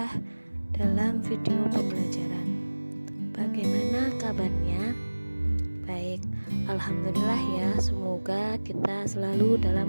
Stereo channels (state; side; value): inverted; both; correlation -1.00